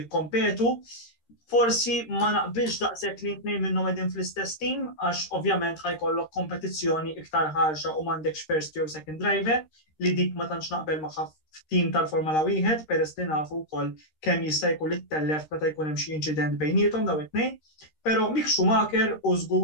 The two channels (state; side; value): late; right; 13 ms